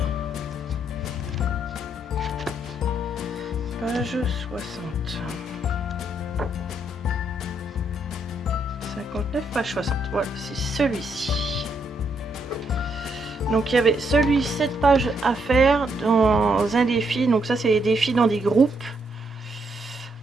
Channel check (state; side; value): normal; both; correlation 0.76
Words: Page 60. 59, page 60. Voilà, c'est celui-ci. Donc il y avait celui 7 pages à faire dans un défi. Donc ça c'est les défis dans des groupes.